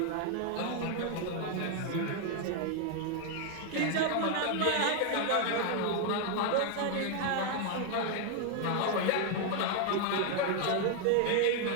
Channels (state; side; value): different; both; correlation 0.01